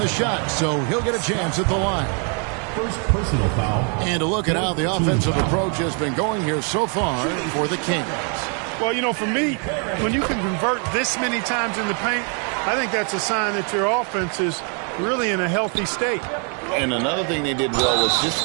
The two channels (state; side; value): quieter; left; 39.7 dB